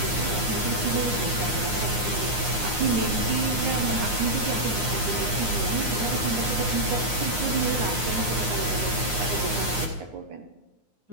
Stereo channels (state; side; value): late; left; 9.7 ms